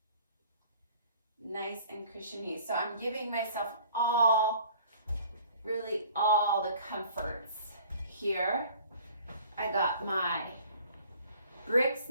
Nice and cushiony. So I'm giving myself really all the comforts here. I got my bricks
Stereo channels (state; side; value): inverted; both; correlation -0.51